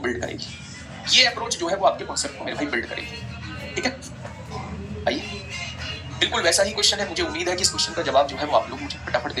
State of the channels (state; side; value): identical; both; correlation 1.00